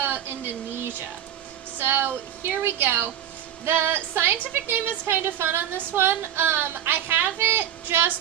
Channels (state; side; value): quieter; left; 10.6 dB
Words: Indonesia. So here we go. The scientific name is kind of fun on this one. I have it